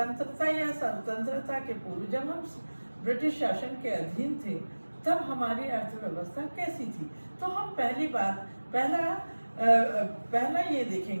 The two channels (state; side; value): inverted; both; correlation -1.00